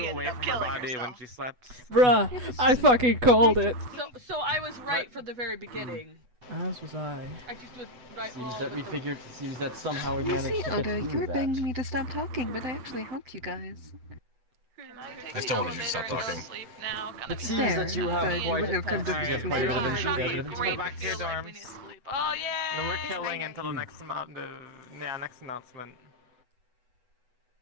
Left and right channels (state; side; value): late; left; 8.1 ms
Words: ended away up from her killing body herself. when she slept. Bruh, I fucking called it. So I was right from the very beginning. As was I. I just was right. Seems well, that we with the- figured. Seems that somehow we You managed see, to get Oda, you through were that. begging me to stop talking, but I actually helped you guys. I still wanted you to stop talking. It seems that you have Fair, quite, but you wouldn't have come to you have me. quite a bit of Alright, intent. go back to your dorms. And then we're killing until the next next announcement.